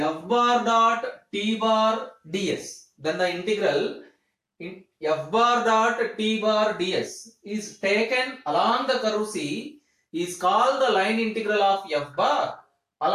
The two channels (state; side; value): identical; both; correlation 1.00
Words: bar dot T bar ds. Then the integral F bar dot T bar ds is taken along the curve C, is called the line integral of F bar